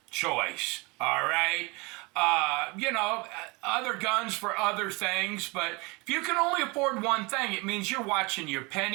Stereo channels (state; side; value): quieter; left; 26.8 dB